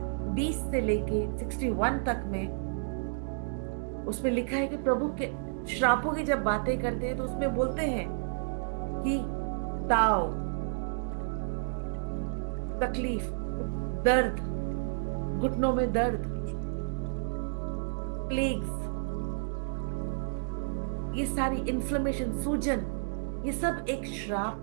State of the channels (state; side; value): silent; left; digital silence